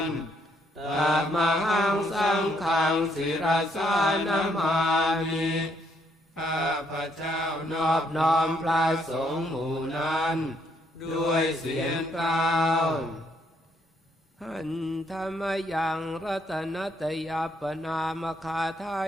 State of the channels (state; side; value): normal; both; correlation 0.72